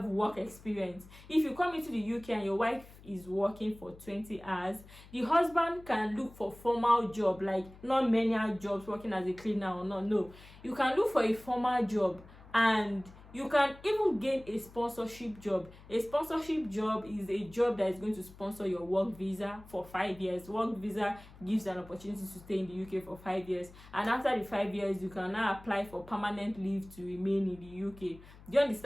work experience. If you come into the UK and your wife is working for 20 hours, the husband can look for formal job, like not manual jobs, working as a cleaner or not. No, you can look for a formal job and you can even gain a sponsorship job. A sponsorship job is a job that is going to sponsor your work visa for 5 years. Work visa gives an opportunity to stay in the UK for 5 years. And after the 5 years, you can now apply for permanent leave to remain in the UK. Do you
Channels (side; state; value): left; noise; hum, 20 dB below the sound